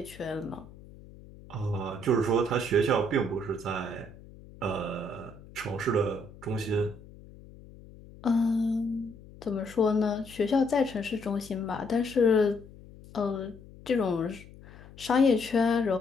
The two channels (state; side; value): noise; left; hum, 20 dB below the sound